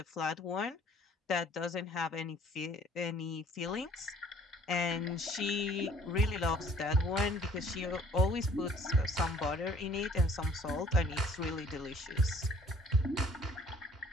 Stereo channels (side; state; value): both; normal; correlation 0.56